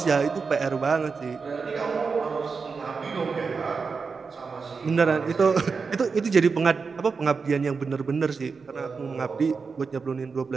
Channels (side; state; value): left; quieter; 5.0 dB